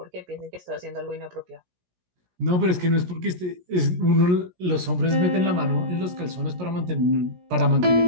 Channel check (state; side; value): late; left; 17 ms